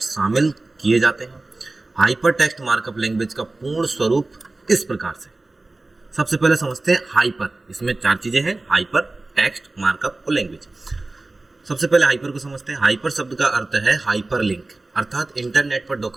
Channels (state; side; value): quieter; left; 3.1 dB